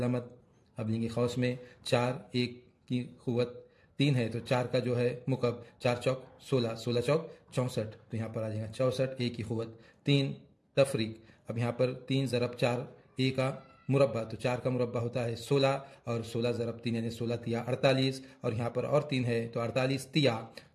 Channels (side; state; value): both; identical; correlation 1.00